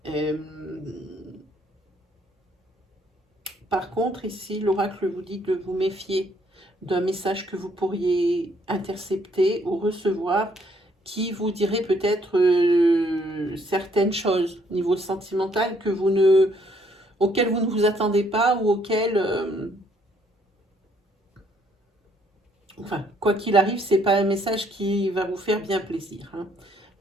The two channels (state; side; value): normal; both; correlation 0.67